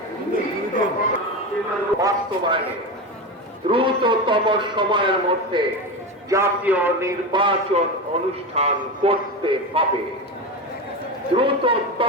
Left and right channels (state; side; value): normal; both; correlation 0.20